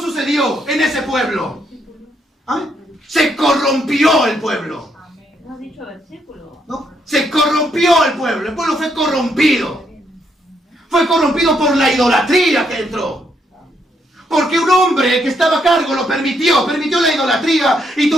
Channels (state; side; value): normal; both; correlation 0.75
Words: sucedió en ese pueblo. ¿Amén? Se corrompió el pueblo. ¿No has dicho versículo? ¿No? Se corrompió el pueblo fue corrompido. Fue corrompido por la idolatría que entró. Porque un hombre que estaba a cargo lo permitió la idolatría y